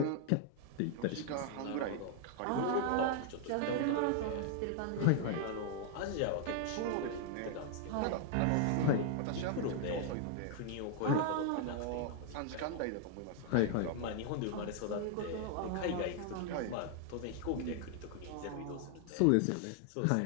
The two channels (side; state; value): both; different; correlation 0.00